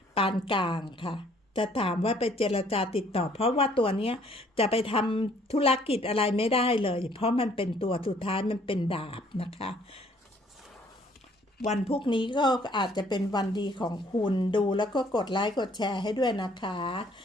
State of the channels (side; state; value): both; normal; correlation 0.62